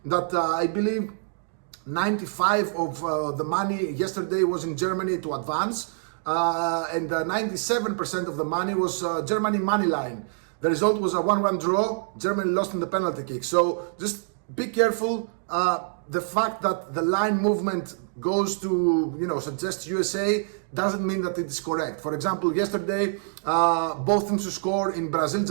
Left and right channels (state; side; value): silent; left; digital silence